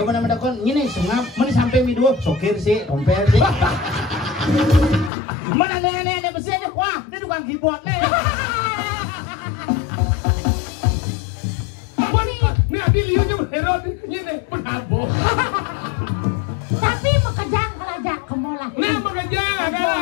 mana mendakon. Ini sengap. Mana sampai midua. Sokir sih, tompel sih. Mana nenek besi aja. Wah, dia tukang keyboard nih. Ini adi liunya berherot. Ini penabo. Tapi mekejang kerajaan kemola. Nah mekejang.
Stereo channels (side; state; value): right; drops out; at 5.1 s